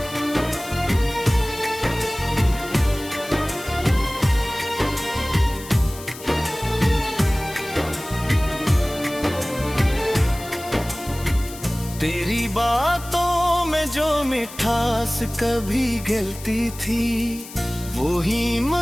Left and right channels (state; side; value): noise; left; hiss, 15 dB below the sound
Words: तेरी बातों में जो मिठास कभी गिलती थी, वो ही